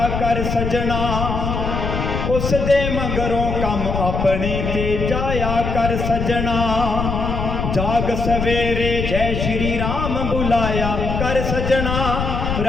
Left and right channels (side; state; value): left; noise; rumble, 2 dB below the sound